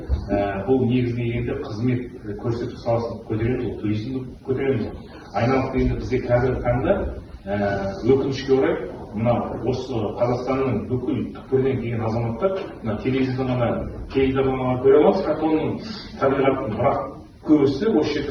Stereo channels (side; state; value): both; identical; correlation 1.00